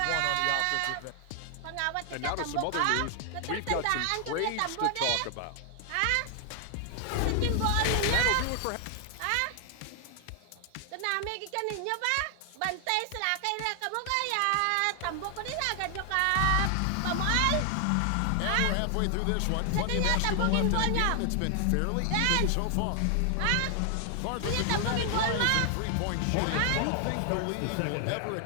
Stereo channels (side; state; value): both; different; correlation 0.00